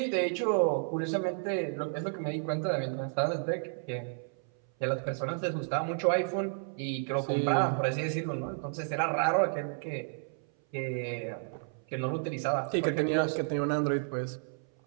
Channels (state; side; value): silent; left; 57 dB below the other